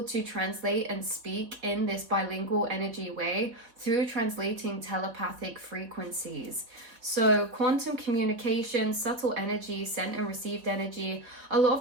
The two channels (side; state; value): left; late; 4.1 ms